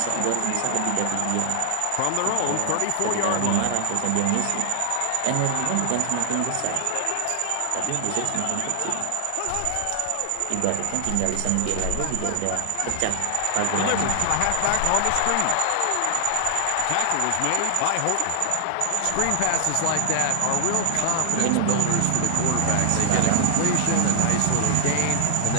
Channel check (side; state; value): both; different; correlation 0.00